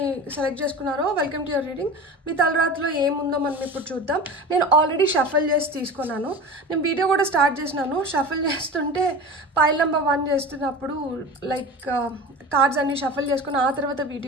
సెలెక్ట్ చేసుకున్నారో వెల్కమ్ టు యువర్ రీడింగ్. మీ తలరాత్రిలో ఏముందో మనం ఇప్పుడు చూద్దాం. నేను ఆల్రెడీ షఫల్ చేసి తీసుకున్నాను. నేను వీడియో కూడా స్టార్ట్ చేసినాను. షఫల్ చేస్తుంటే పైల్ నెంబర్ 1 చేస్తున్నప్పుడు లైక్ కార్డ్స్ అన్ని షఫల్ చేసుకుని ఆ తర్వాత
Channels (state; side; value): normal; both; correlation 0.33